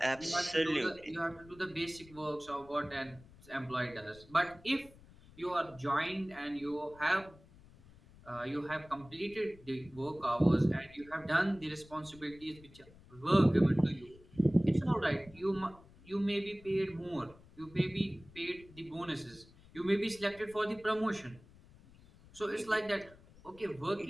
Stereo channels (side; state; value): left; noise; rumble, 23 dB below the sound